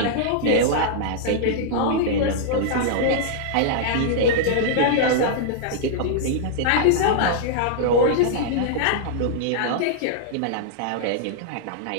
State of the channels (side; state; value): both; different; correlation -0.01